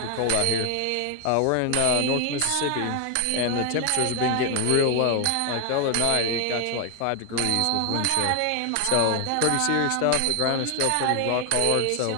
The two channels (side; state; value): both; different; correlation 0.01